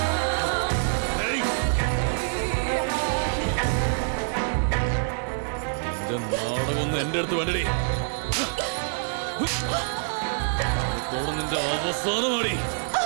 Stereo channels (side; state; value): left; silent; digital silence